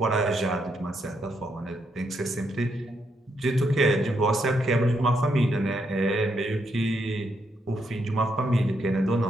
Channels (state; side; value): normal; both; correlation 0.78